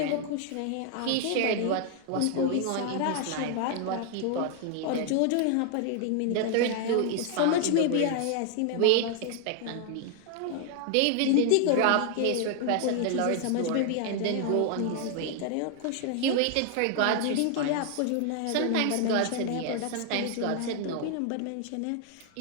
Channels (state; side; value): different; both; correlation 0.00